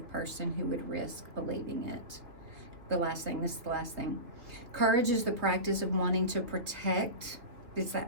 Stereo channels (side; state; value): left; late; 2.9 ms